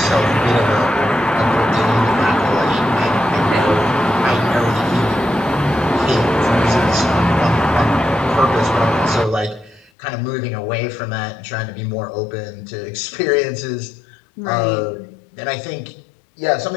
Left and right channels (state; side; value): drops out; right; at 9.9 s